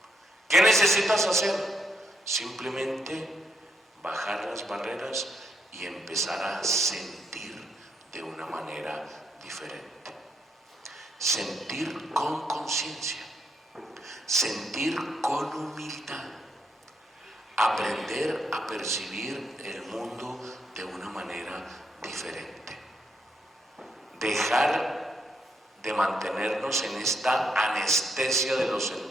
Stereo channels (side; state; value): both; normal; correlation 0.77